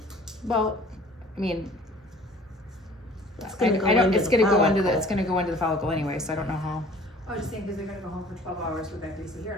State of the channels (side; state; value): both; normal; correlation 0.50